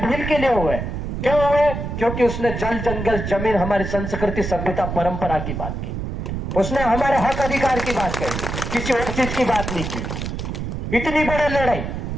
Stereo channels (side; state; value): right; noise; rumble, 4 dB below the sound